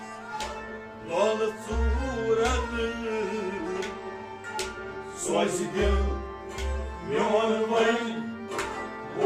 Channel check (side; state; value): both; identical; correlation 1.00